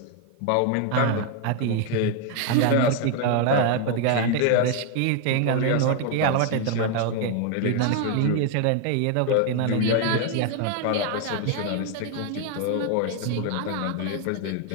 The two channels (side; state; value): both; different; correlation 0.01